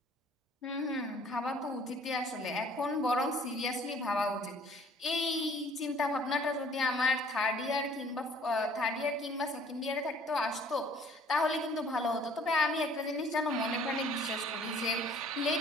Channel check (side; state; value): both; normal; correlation 0.56